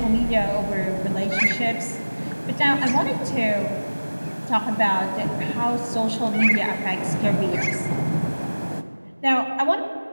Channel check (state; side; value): inverted; both; correlation -1.00